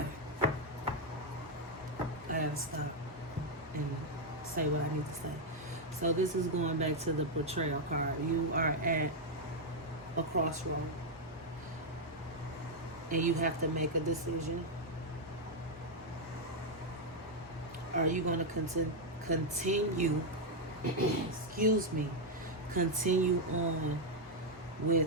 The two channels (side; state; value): both; normal; correlation 0.00